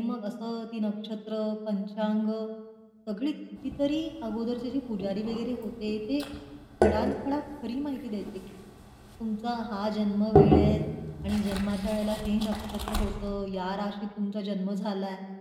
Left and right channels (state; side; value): identical; both; correlation 1.00